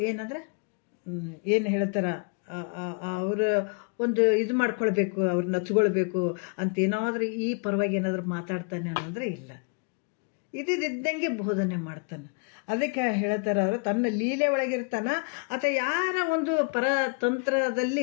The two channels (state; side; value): quieter; right; 36.5 dB